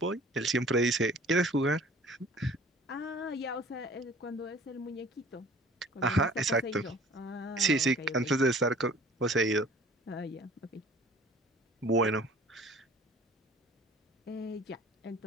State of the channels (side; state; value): both; normal; correlation 0.49